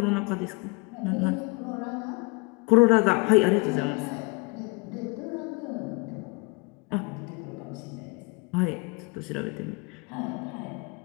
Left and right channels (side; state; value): right; quieter; 28.3 dB